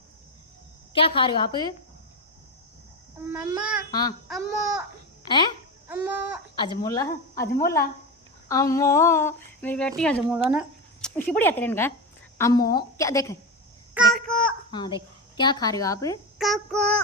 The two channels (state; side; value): normal; both; correlation 0.17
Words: क्या खा रहे हो आप मम्मा हाँ अम्मो हैं अम्मो अजमोला अजमोला अम्मो मेरी बेटी अजमोला ना इसी बढ़िया तेरे का अम्मो क्या देख काको हाँ देख क्या खा रहे हो आप काको